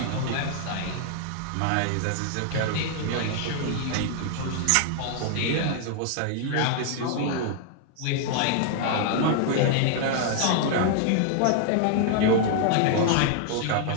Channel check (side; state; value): both; different; correlation 0.00